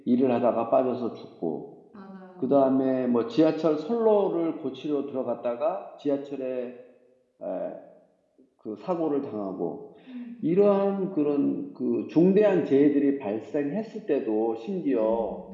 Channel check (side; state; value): both; identical; correlation 1.00